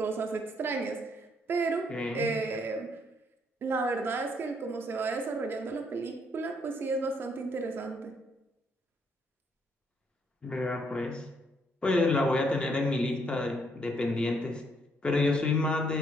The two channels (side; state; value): both; normal; correlation 0.71